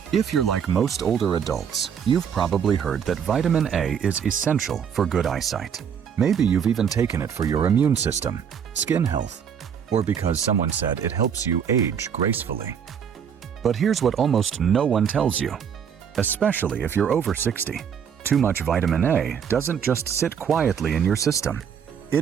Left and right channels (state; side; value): quieter; left; 7.7 dB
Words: If you're like most older adults, you've probably heard that vitamin A is essential for good eyesight. Maybe you've even taken it for your immune system, skin health, or because someone said it helps you age gracefully. But here's what almost no one tells you, especially if you're over 60. Too much vitamin A doesn't just sit quietly in your system.